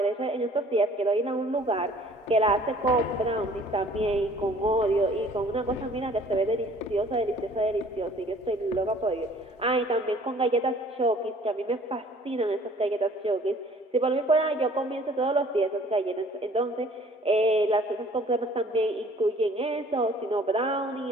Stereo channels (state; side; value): normal; both; correlation 0.54